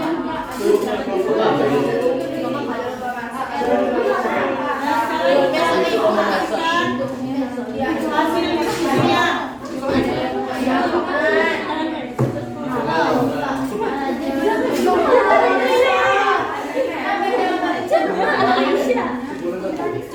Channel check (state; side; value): identical; both; correlation 1.00